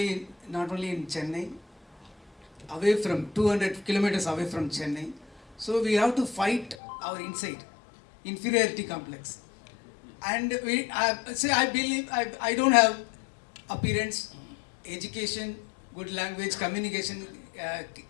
in Chennai, away from 200 kilometers away from Chennai. So we have to fight our inside inferiority complex, and I believe I don't have appearance, education, good language, communication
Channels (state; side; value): drops out; right; at 6.8 s